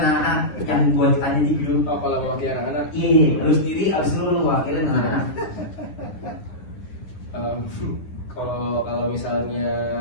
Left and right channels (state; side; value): late; right; 10 ms